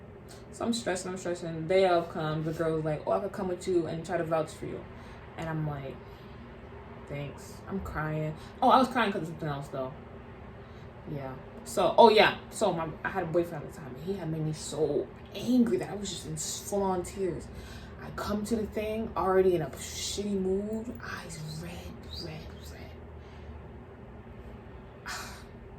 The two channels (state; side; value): identical; both; correlation 1.00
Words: So I'm stressing. The day of comes, the girl was like, oh, I could come with you and try to vouch for you. And I'm like, thanks. I'm crying. Oh, I was crying because of something else though. Yeah. So, I had a boyfriend at the time, and he had made me so angry that I was just in full-on tears. I come to the thing already in a shitty mood, eyes red.